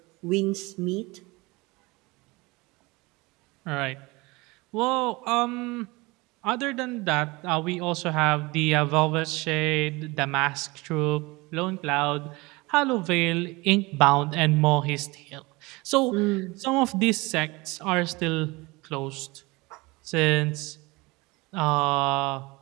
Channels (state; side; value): quieter; left; 23.7 dB